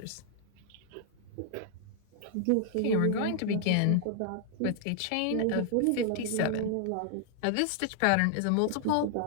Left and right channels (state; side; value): different; both; correlation 0.00